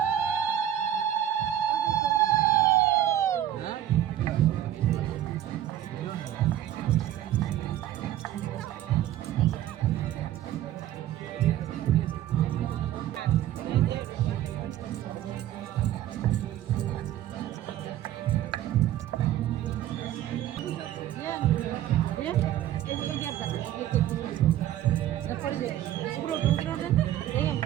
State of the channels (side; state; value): left; quieter; 12.0 dB